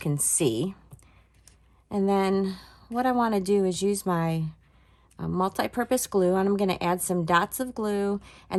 see. And then what I want to do is use my multi-purpose glue, and I'm going to add some dots of glue,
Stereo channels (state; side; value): identical; both; correlation 1.00